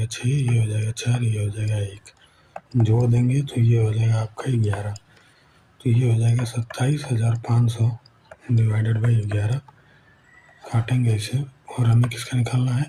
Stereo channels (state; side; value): identical; both; correlation 1.00